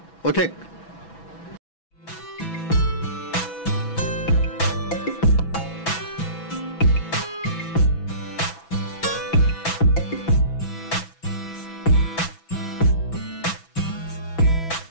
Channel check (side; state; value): right; late; 6.1 ms